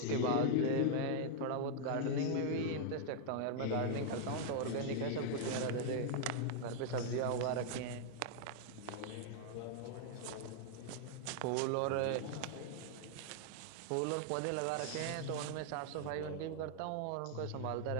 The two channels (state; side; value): different; both; correlation -0.01